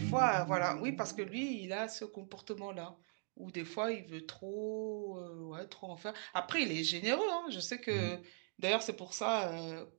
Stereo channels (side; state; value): left; silent; 51 dB below the other